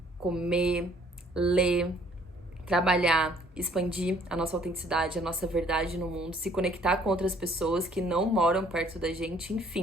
comer, ler, trabalhar, expandir a nossa autenticidade, a nossa verdade no mundo, se conectar com outras pessoas que não moram perto da gente,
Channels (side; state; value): both; normal; correlation 0.60